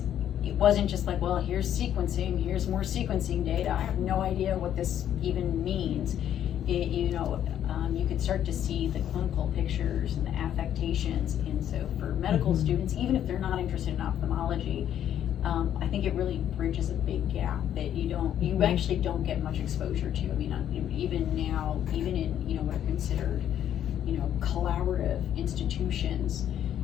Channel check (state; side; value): quieter; right; 10.4 dB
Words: it wasn't just like, well, here's sequencing, here's more sequencing data. I have no idea what this even means. You could start to see the clinical pictures and the affectations. And so for medical students, even if they're not interested in ophthalmology, I think it really bridges a big gap that you actually don't get much exposure to. I mean, even now, even in, what are considered, collaborative institutions,